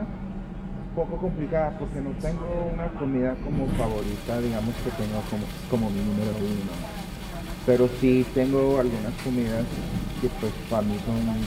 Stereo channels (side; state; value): both; identical; correlation 1.00